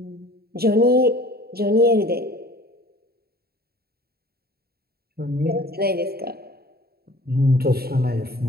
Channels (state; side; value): late; left; 0.45 ms